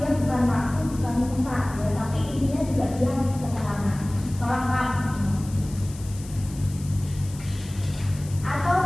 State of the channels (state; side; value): noise; left; hiss, 18 dB below the sound